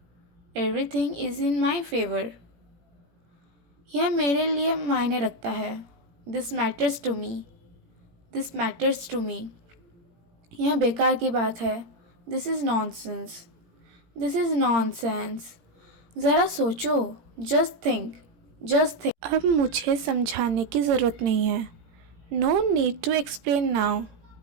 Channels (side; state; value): left; late; 17 ms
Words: Everything is in my favour. यह मेरे लिए मायने रखता है। This matters to me. This matters to me. यह बेकार की बात है। This is nonsense. This is nonsense. ज़रा सोचो। Just think. Just think. अब मुझे समझाने की ज़रूरत नहीं है। No need to explain now.